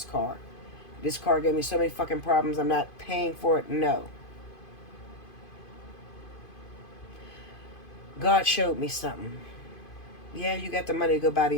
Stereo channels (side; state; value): right; late; 2.5 ms